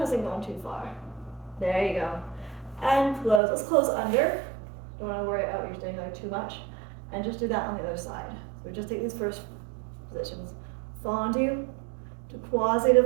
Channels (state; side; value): drops out; left; at 3.4 s